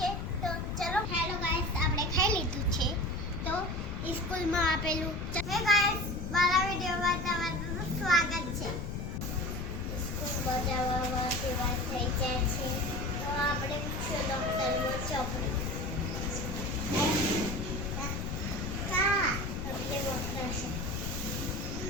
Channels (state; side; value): noise; left; rumble, 4 dB below the sound